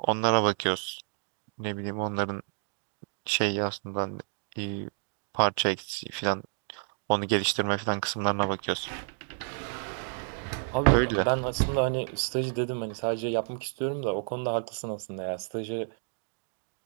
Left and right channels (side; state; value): left; silent; 58 dB below the other